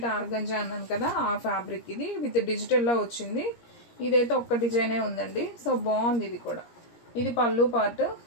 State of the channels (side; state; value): right; late; 17 ms